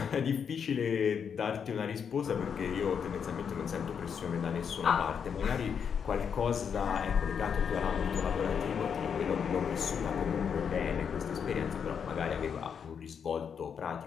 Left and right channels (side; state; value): right; quieter; 7.1 dB